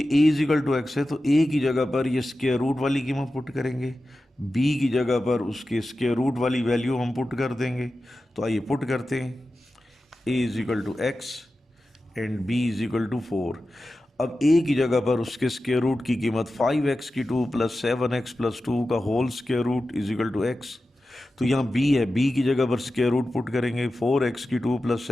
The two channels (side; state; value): both; normal; correlation 0.93